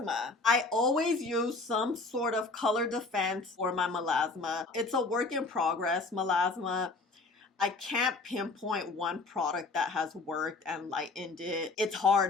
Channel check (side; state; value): right; quieter; 3.6 dB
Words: I always use some sort of color defense for my melasma. It's a work in progress, melasma. I can't pinpoint one product that has worked and lightened it. It's